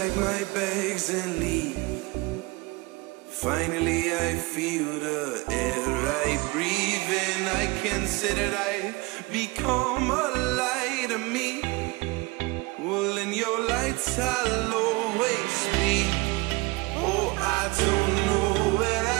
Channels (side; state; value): left; quieter; 24.4 dB